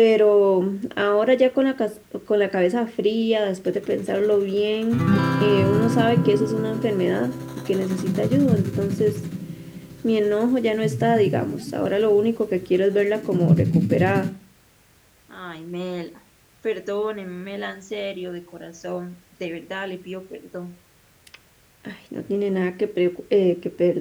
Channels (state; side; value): identical; both; correlation 1.00